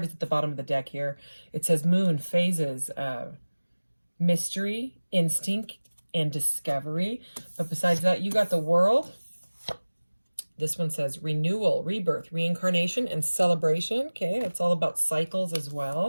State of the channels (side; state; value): both; inverted; correlation -1.00